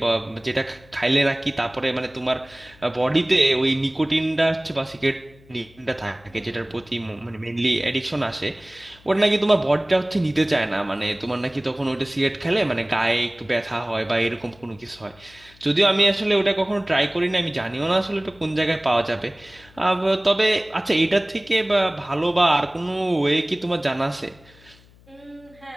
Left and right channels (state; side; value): noise; left; hum, 27 dB below the sound